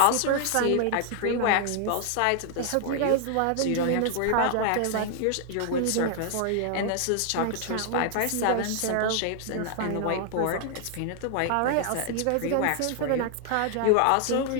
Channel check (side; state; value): both; different; correlation 0.00